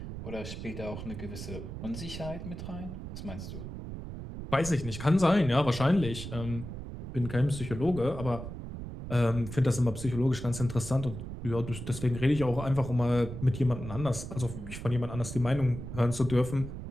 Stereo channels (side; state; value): right; noise; rumble, 9 dB below the sound